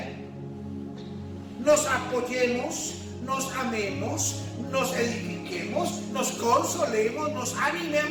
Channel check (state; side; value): identical; both; correlation 1.00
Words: nos apoyemos, nos amemos, nos edifiquemos, nos consolemos, nos